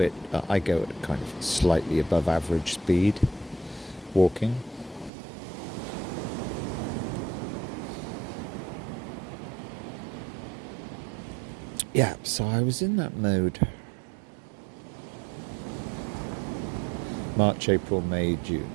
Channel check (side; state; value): left; drops out; at 5.1 s